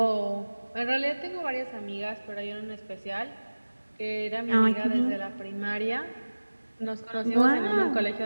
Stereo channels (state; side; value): inverted; both; correlation -1.00